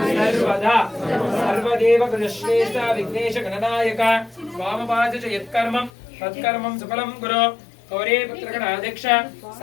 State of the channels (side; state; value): right; drops out; at 5.9 s